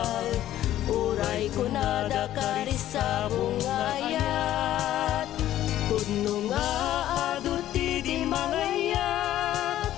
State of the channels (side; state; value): right; quieter; 12.9 dB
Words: uray kunada karisabong nga ayat. Pudno nga aduti di mangayat,